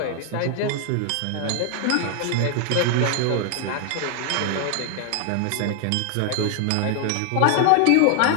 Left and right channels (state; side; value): different; both; correlation 0.00